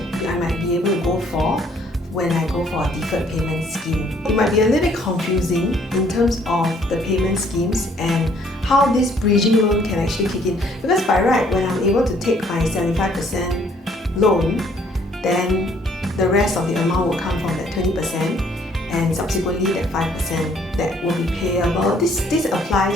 might be able to go for when I go for a deferred payment scheme? It might be a little bit confusing in terms of the payment schemes and how this bridging loan can actually kick in. Because by right, when I'm able to take my 75% loan, then the rest of the amount will come from that 20% and subsequently that 5% that will be payable. This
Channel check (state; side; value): normal; both; correlation 0.63